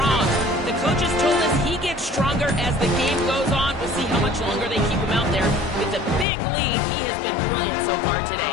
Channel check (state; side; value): drops out; right; at 6.2 s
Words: The coaches told us he gets stronger as the game goes on. We'll see how much longer they keep him out there. With a big lead, he has been brilliant so far